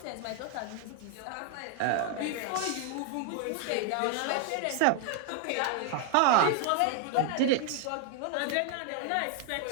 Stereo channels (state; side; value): different; both; correlation 0.00